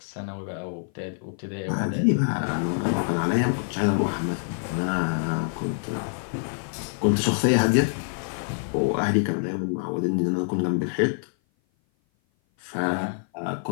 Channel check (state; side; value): silent; right; 56 dB below the other